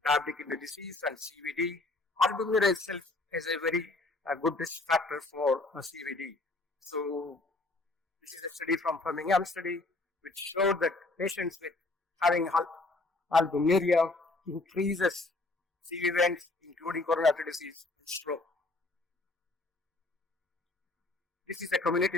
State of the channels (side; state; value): right; quieter; 3.1 dB